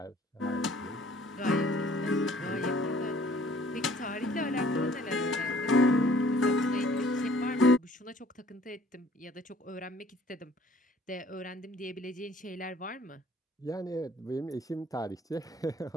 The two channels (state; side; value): normal; both; correlation 0.56